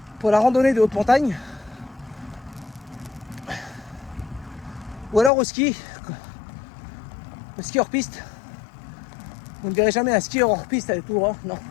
pour la randonnée de haute montagne ou alors au ski. Le ski hors piste. Vous ne verrez jamais un skieur hors piste avec tout droit, non.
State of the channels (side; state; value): right; drops out; at 5.3 s